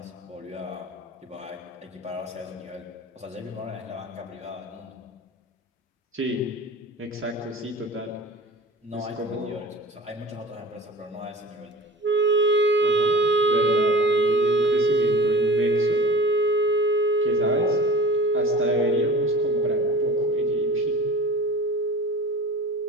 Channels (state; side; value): normal; both; correlation 0.38